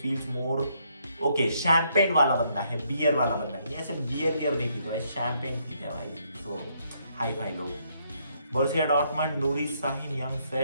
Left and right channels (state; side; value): inverted; both; correlation -0.72